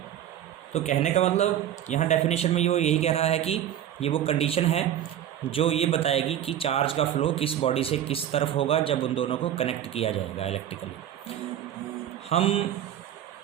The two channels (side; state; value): left; quieter; 11.0 dB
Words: तो कहने का मतलब यहाँ डेफिनेशन में यही कह रहा है कि ये वो कंडीशन है जो ये बताएगी कि चार्ज का फ्लो किस बॉडी से किस तरफ होगा जब उन दोनों को कनेक्ट किया जाएगा इलेक्ट्रिकली। हम